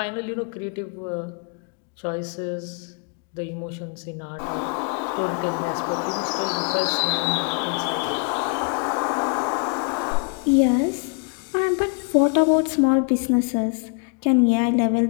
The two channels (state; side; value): quieter; right; 39.4 dB